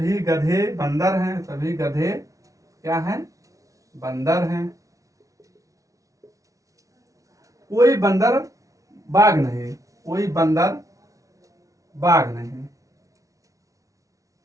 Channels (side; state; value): left; late; 0.16 ms